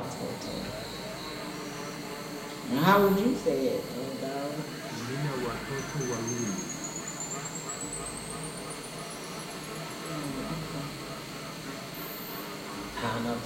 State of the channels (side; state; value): both; identical; correlation 1.00